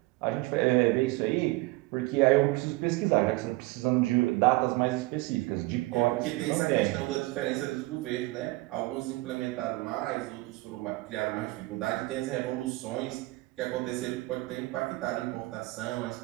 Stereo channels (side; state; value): left; quieter; 21.4 dB